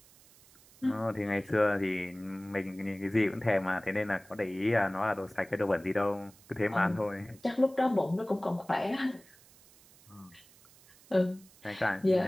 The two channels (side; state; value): right; noise; hiss, 26 dB below the sound